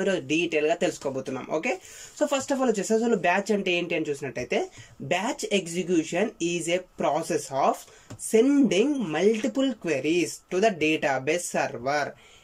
ఈరోజు డీటెయిల్ గా తెలుసుకోబోతున్నాం. Okay, so first of all వచ్చేసి అసలు బ్యాచ్ అంటే ఏంటి అని చూసినట్టయితే, batch execution is a process of sending multiple queries to the database server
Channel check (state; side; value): identical; both; correlation 1.00